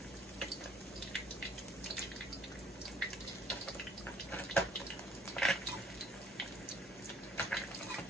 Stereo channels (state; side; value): normal; both; correlation 0.59